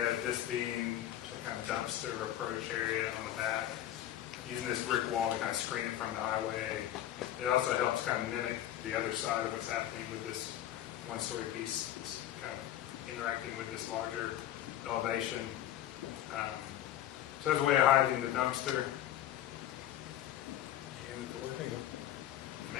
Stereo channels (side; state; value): right; quieter; 12.4 dB